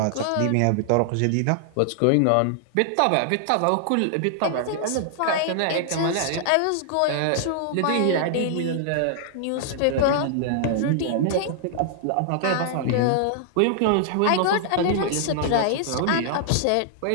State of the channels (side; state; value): both; different; correlation -0.01